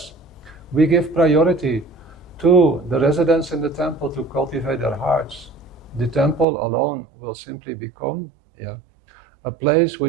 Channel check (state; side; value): drops out; left; at 6.5 s